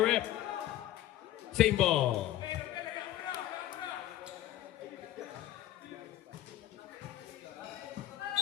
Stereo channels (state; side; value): quieter; right; 13.6 dB